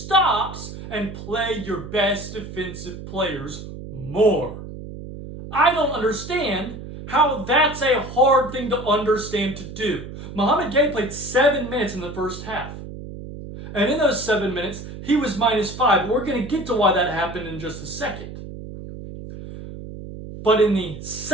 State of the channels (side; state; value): right; noise; hum, 11 dB below the sound